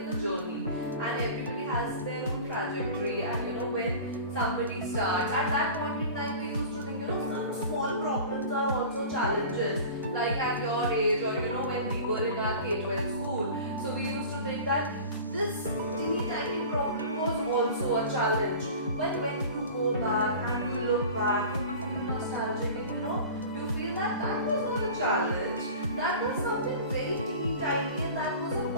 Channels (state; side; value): inverted; both; correlation -0.38